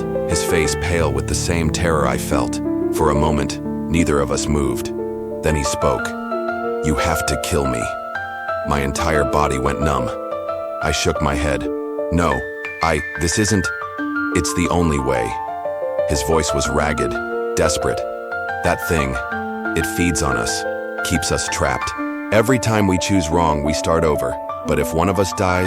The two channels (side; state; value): both; identical; correlation 1.00